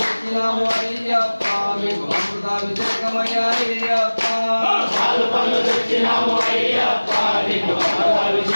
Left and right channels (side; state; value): both; inverted; correlation -1.00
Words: అయ్యప్ప మీకు అమృతాభిషేకమయ్యా అయ్యప్ప పాలు పళ్ళు తెచ్చినాము అయ్యప్ప నీకు